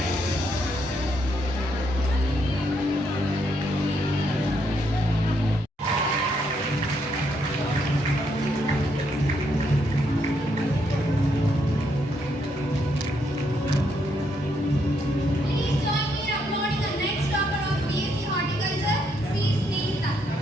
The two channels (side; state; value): both; normal; correlation 0.75